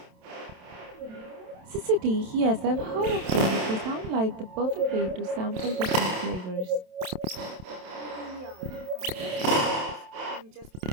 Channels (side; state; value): left; late; 27 ms